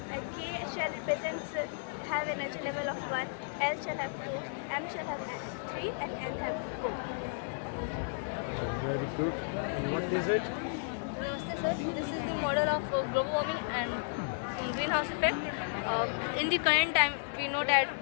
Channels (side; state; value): right; silent; 55 dB below the other